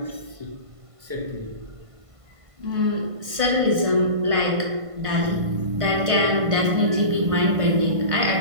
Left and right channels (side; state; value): left; late; 1.5 ms